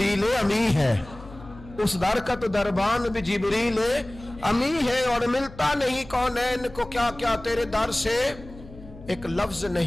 امی ہے. اس در کا تو دربان بھی جبریل امی ہے. اور ملتا نہیں کونین کو کیا کیا تیرے در سے ایک لفظ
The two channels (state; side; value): noise; left; hum, 18 dB below the sound